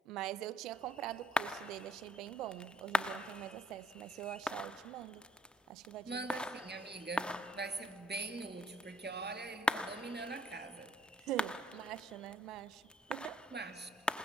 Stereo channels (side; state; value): both; normal; correlation 0.65